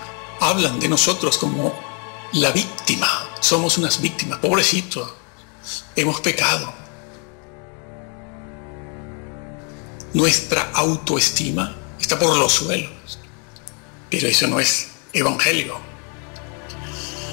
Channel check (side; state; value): right; quieter; 37.1 dB